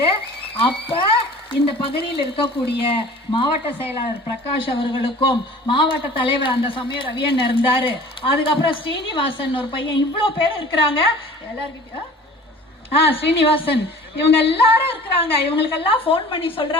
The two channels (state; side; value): normal; both; correlation 0.45